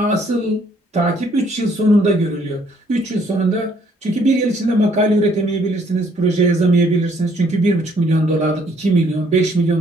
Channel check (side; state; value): both; normal; correlation 0.65